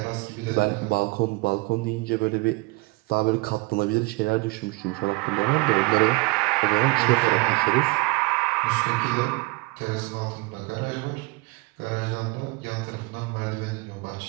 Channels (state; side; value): quieter; left; 24.9 dB